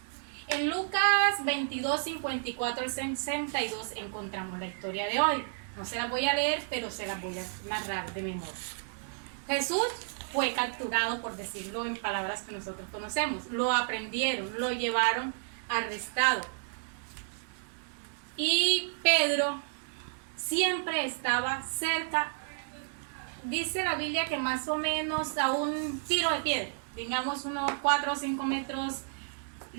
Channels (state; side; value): silent; left; digital silence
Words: En Lucas 22, 54 al 62 encontramos la historia de hoy. No se las voy a leer, pero se las voy a narrar de memoria. Jesús fue capturado, por decirlo en palabras que nosotros conocemos. Lo aprendieron, lo llevaron arrestado. Y Pedro siempre estaba cerca. Dice la Biblia que más o menos a un tiro de piedra, digamos unos 4 o 5 metros